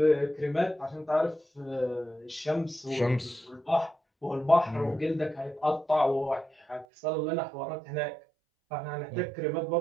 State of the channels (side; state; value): left; drops out; at 6.9 s